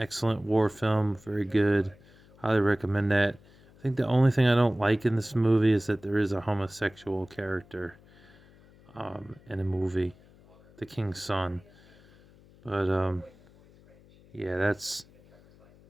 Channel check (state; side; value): noise; left; hum, 26 dB below the sound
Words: war film, very good. Highly recommend that. I think the only thing I don't like in this movie is that there is a homosexual character in the movie, the King's Son. But yeah, that's